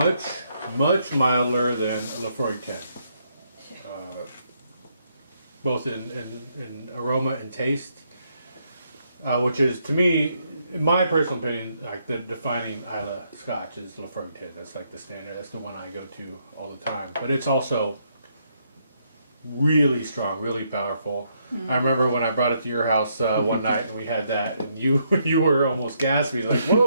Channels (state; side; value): inverted; both; correlation -0.75